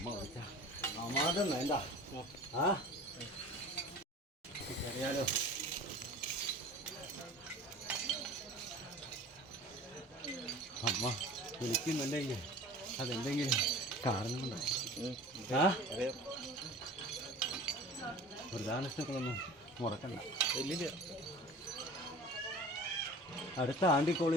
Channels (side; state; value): both; normal; correlation 0.41